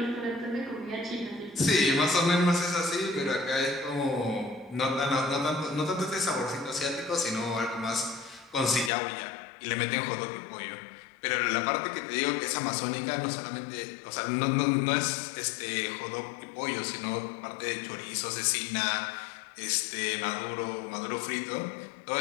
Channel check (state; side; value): drops out; right; at 8.9 s